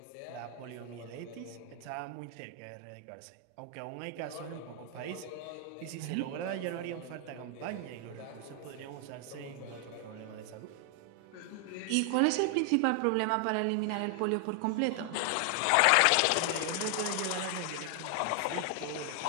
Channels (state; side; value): different; both; correlation 0.00